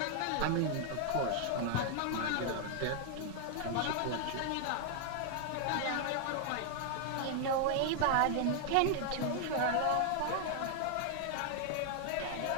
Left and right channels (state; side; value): different; both; correlation 0.00